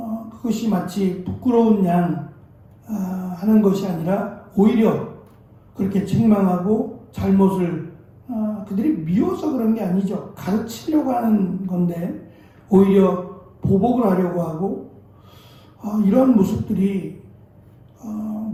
그것이 마치 부끄러운 양 하는 것이 아니라 오히려 그렇게 책망하고 잘못을 그들이 미워서 그런 게 아니죠. 가르치려고 하는 건데 오히려 보복을 하려고 하고 이런 모습들이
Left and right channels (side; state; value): both; identical; correlation 1.00